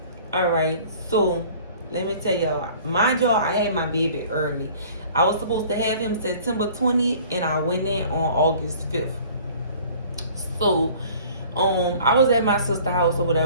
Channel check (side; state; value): both; inverted; correlation -0.49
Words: all right, so let me tell y'all, mind y'all, I had my baby early. I was supposed to have him September 20th and I went in on August 5th. So I was at my sister's house or